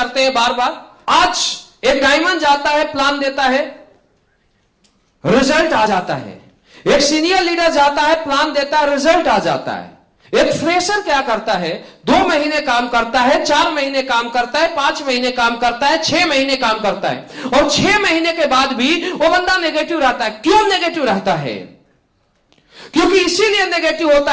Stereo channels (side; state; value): both; identical; correlation 1.00